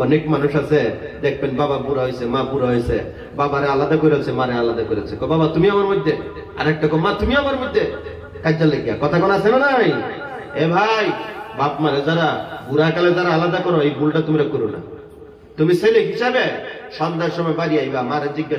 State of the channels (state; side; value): identical; both; correlation 1.00